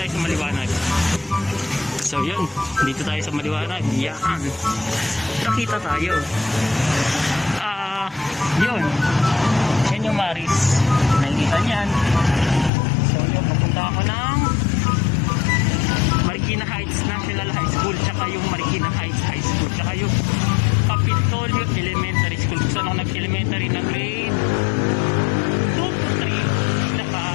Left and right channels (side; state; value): right; drops out; at 12.7 s